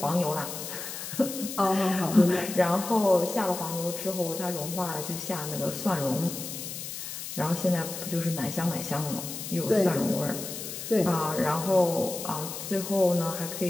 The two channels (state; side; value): noise; left; hiss, 8 dB below the sound